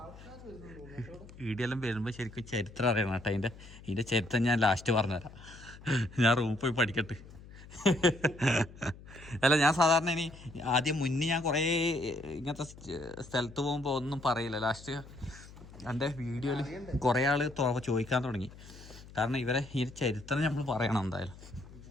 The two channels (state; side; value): noise; left; hum, 18 dB below the sound